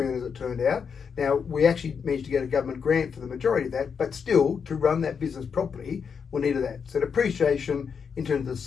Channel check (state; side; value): quieter; right; 6.4 dB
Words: as it turned out. Now, we actually managed to get a government grant for the majority of that, but still, to run that business properly, we needed that. So depreciation in terms of the